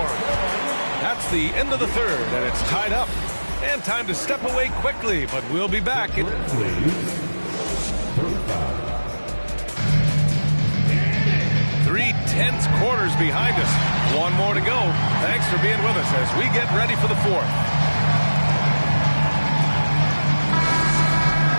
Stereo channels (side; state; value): both; inverted; correlation -1.00